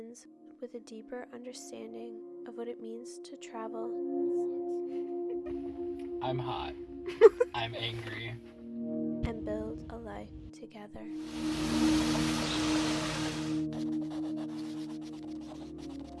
with a deeper understanding of what it means to travel. I'm hot. I'm angry. And build a life together.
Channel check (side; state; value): both; identical; correlation 1.00